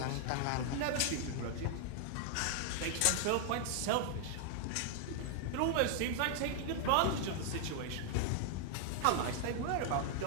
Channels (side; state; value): both; different; correlation 0.00